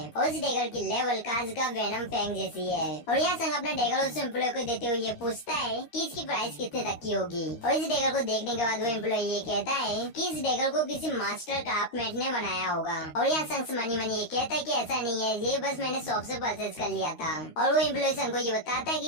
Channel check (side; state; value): right; late; 13 ms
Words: और इस डैगर की लेवल काज का वेनम फैंग जैसी है। और यहाँ संग अपना डैगर उस एम्प्लॉय को देते हुए ये पूछता है कि इसकी प्राइस कितने तक की होगी। और इस डैगर को देखने के बाद वो एम्प्लॉय ये कहता है कि इस डैगर को किसी मास्टर क्राफ्टमैन ने बनाया होगा। और यहाँ संग मनी मनी ये कहता है कि ऐसा नहीं है, ये बस मैंने शॉप से परचेज कर लिया था। और वो एम्प्लॉय संग को ये बताता है